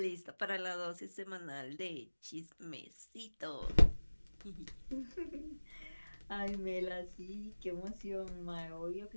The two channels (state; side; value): inverted; both; correlation -1.00